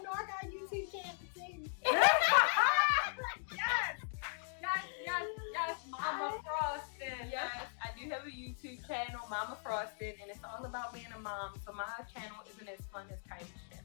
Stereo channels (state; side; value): silent; right; digital silence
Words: know I got YouTube channel to sing. Yes. Mama Frosted. Yes, I do have a YouTube channel, Mama Frosted, and it's all about being a mom. So my channel isn't as fun as Kyemah's